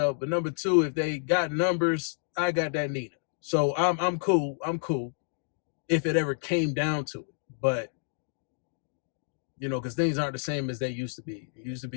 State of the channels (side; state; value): right; silent; digital silence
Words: But number two, if they got numbers, I got that Nina. So I'm cool. I'm cool if it ever came down to it. But, because things aren't the same as they used to be. It used to